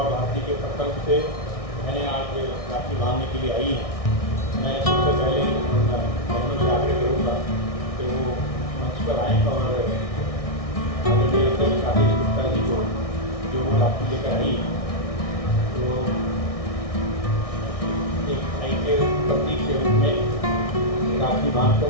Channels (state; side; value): late; right; 1.6 ms